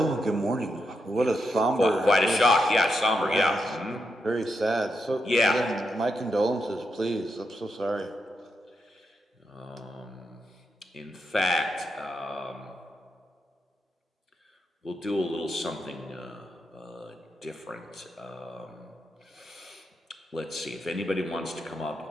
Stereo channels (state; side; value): normal; both; correlation 0.83